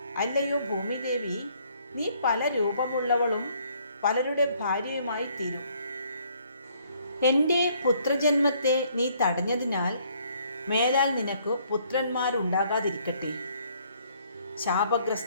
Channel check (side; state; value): both; inverted; correlation -0.65